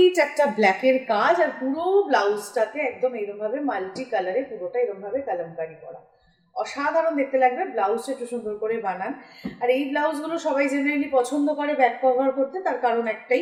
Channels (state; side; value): identical; both; correlation 1.00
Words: একটা ব্ল্যাকের কাজ, আর পুরো ব্লাউজটাতে একদম এরকমভাবে মাল্টি কালারে পুরোটা এরকমভাবে কালামকারি করা, অসাধারণ দেখতে লাগবে। ব্লাউজটা একটু সুন্দর করে বানান। আর এই ব্লাউজগুলো সবাই জেনারেলি পছন্দ করে ব্যাক কভার করতে, তার কারণ